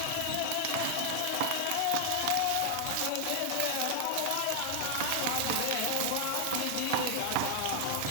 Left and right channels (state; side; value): different; both; correlation 0.00